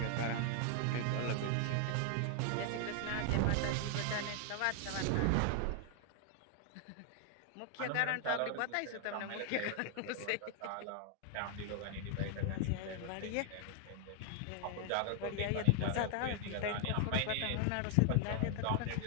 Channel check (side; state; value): both; different; correlation 0.00